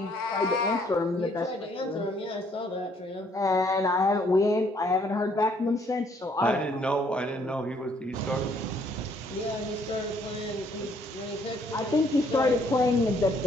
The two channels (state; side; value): normal; both; correlation 0.65